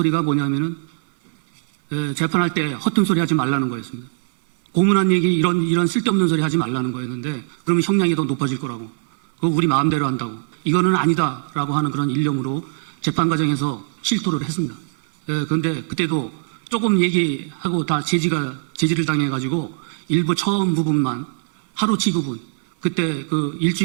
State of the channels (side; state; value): left; silent; 61 dB below the other